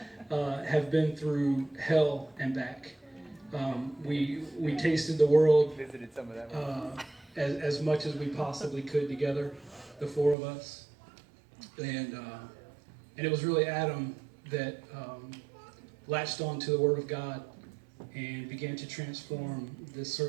have been through hell and back. We tasted the world as much as we possibly could together, the four of us, and it was really Adam that latched on to the Word of God and began to transform this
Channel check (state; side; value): drops out; left; at 10.4 s